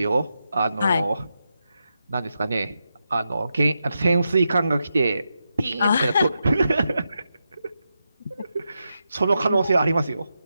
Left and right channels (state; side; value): inverted; both; correlation -0.87